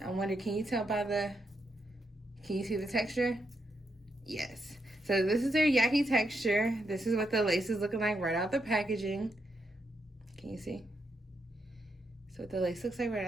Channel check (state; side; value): normal; both; correlation 0.81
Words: wonder, can you tell by can you see the texture? Yes. So this is their YAKI texture. This is what the lace is looking like right out the packaging. Can you see? So the lace looks like right